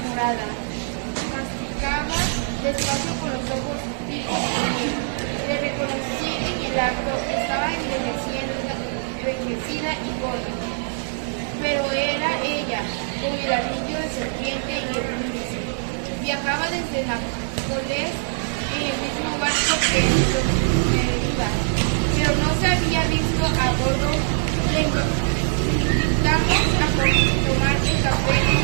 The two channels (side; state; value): left; silent; digital silence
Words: morada. Masticaba despacio con los ojos fijos en mí. Le reconocí en el acto. Estaba envejecida y gorda, pero era ella, con el anillo de serpiente y el índice. Viajaba desde Nápoles en el mismo barco que Merida, pero no se había visto a bordo. Le invitamos a tomar el café en